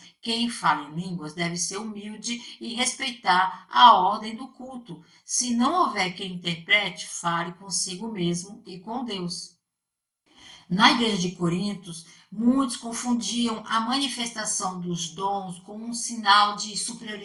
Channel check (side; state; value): both; identical; correlation 1.00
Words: Quem fala em línguas deve ser humilde e respeitar a ordem do culto. Se não houver quem interprete, fale consigo mesmo e com Deus. Na igreja de Corintos, muitos confundiam a manifestação dos dons com um sinal de